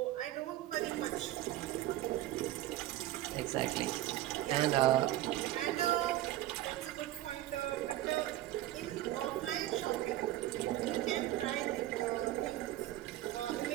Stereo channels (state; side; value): quieter; left; 14.7 dB